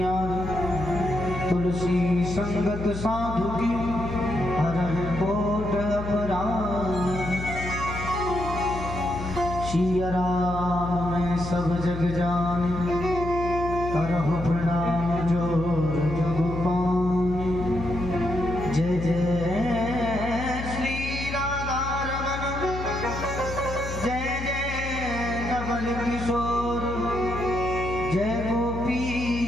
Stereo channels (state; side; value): noise; left; hum, 7 dB below the sound